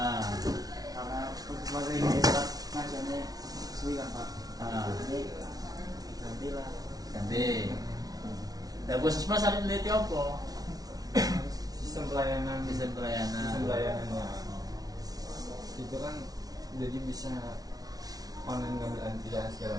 Karena puskesmas ini saat ngajarnya suwi kan Pak. Ini gantilah. Ganti. Dan puskesmas ada neliti apa? Sistem pelayanan Sistem pelayanannya. itu kan jadi bisa online ngambil antrian segala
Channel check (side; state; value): left; late; 0.18 ms